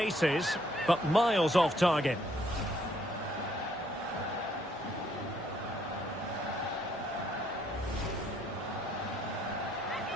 but miles off target.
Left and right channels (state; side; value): normal; both; correlation 0.68